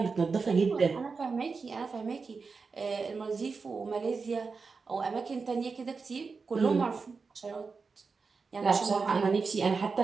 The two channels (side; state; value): left; quieter; 4.7 dB